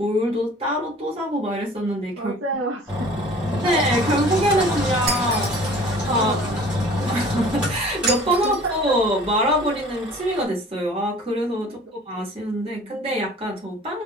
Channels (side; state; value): both; normal; correlation 0.47